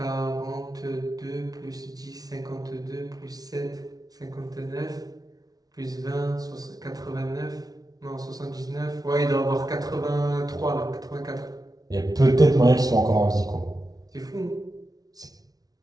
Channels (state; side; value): late; left; 0.18 ms